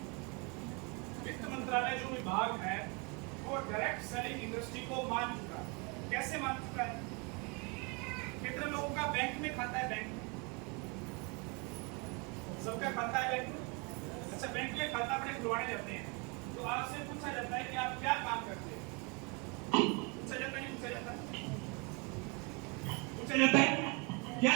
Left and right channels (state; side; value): quieter; left; 31.2 dB